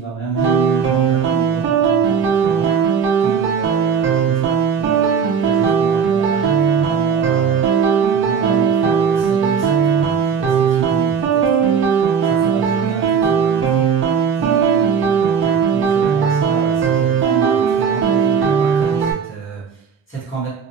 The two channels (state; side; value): quieter; left; 6.6 dB